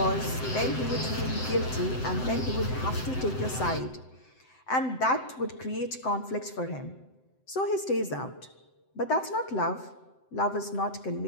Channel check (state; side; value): late; right; 7.8 ms